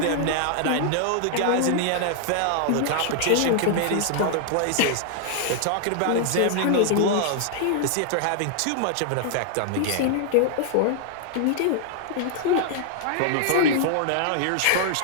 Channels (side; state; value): both; different; correlation 0.00